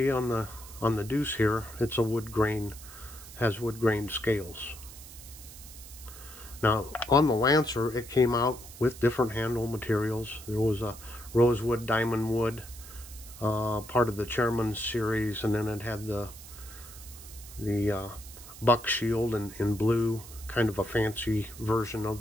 on the Deuce here, it's a wood grain, has wood grain scales. Now, on the Lancer, it came out with different handle materials. There was a rosewood, diamond wood, part of the Chairman's series, and then it had the buck shield in blue, kind of a fancy version of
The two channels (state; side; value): noise; right; hiss, 16 dB below the sound